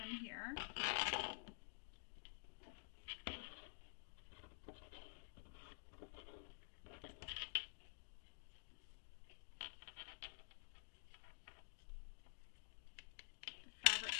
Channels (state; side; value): silent; right; digital silence